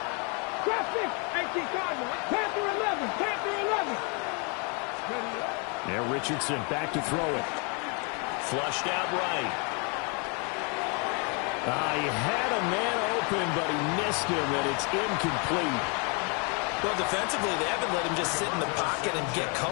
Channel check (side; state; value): right; quieter; 34.5 dB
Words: Traffic, 18 Cardinals. Panther 11, Panther 11. Now Richardson back to throw it. Flushed out right. He had a man open, but he missed him, and it's incomplete. Well, defensively, they haven't let him just sit in the pocket and get